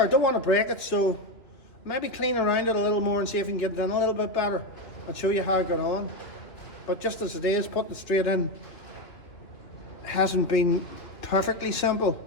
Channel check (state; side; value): late; right; 2.9 ms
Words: I don't want to break it, so maybe clean around it a little more and see if we can get it in a little bit better and show you how I got on. But just as it is, putting it straight in hasn't been perfectly simple.